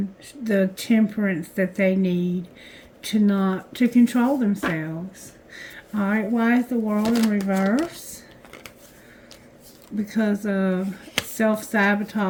the temperance that they need to control themselves. Alright, why is the World in reverse? Because of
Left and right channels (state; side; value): identical; both; correlation 1.00